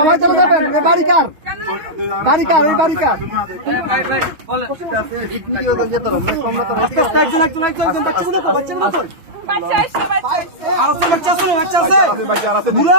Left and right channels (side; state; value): left; late; 6.2 ms